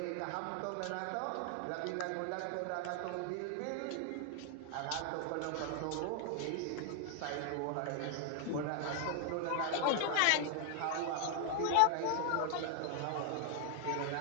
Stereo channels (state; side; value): different; both; correlation 0.00